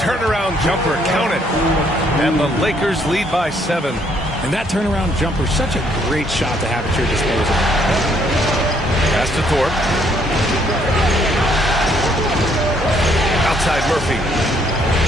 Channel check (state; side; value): normal; both; correlation 0.68